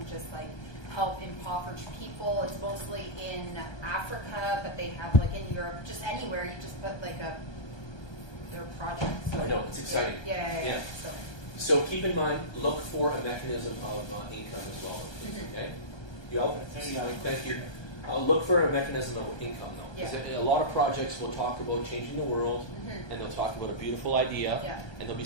just like help impoverished people. It's mostly in Africa, but they have like in Europe, just anywhere. You just put like their project. So, I know, it's exciting. Yeah. So keep in mind, look for a mechanism of income as well. Okay? You all? Thank you. Look for a mechanism of income, though. Yeah. A lot of projects will talk about changing the world, and they'll talk about a beautiful idea, and there'll be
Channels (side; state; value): right; late; 1.3 ms